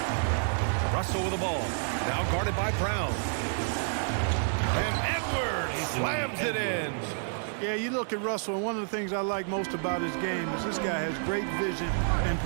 Russell with the ball. Now guarded by Brown. And Edwards slams it in. Yeah, you look at Russell, and one of the things I like most about his game is this guy has great vision and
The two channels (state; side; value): silent; left; digital silence